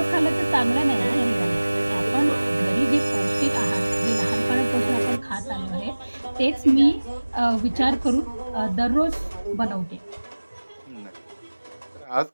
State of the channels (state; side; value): inverted; both; correlation -1.00